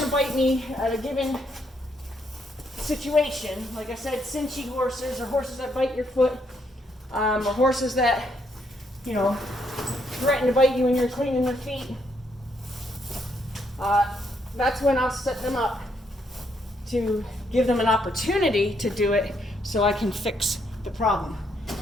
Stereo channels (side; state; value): both; normal; correlation 0.74